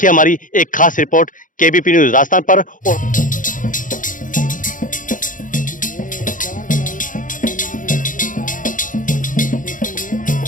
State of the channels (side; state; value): right; late; 0.38 ms